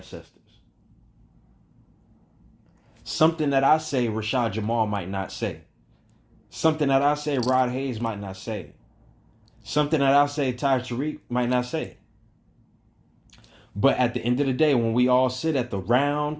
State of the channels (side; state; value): both; identical; correlation 1.00